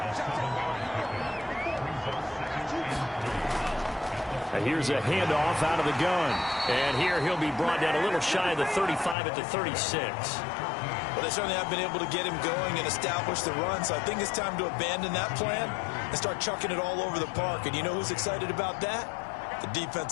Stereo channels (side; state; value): right; drops out; at 9.2 s